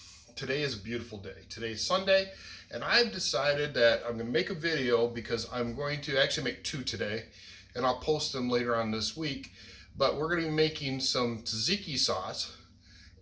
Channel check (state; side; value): identical; both; correlation 1.00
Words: today is a beautiful day. Today's Sunday and I've decided that I'm going to make a video because I'm going to actually make two today and I'll post them later on this week. But we're going to be making some tzatziki sauce